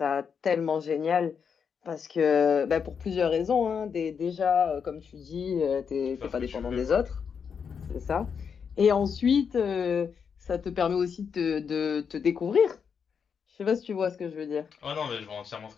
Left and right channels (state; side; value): quieter; right; 6.6 dB